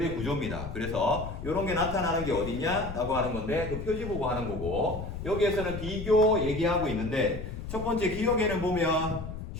구조입니다. 그래서 이런 게 나타나는 게 어디냐 라고 하는 건데 그 표지 보고 하는 거고, 여기에서는 비교 얘기하고 있는데 첫 번째 기억에는 보면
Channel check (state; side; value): noise; left; rumble, 8 dB below the sound